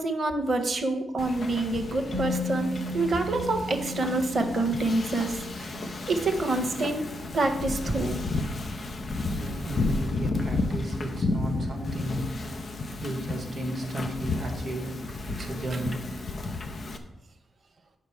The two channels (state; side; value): normal; both; correlation 0.78